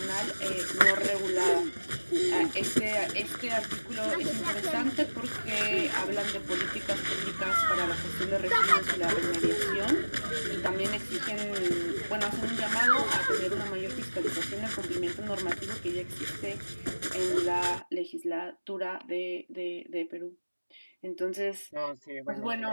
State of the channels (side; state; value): both; inverted; correlation -1.00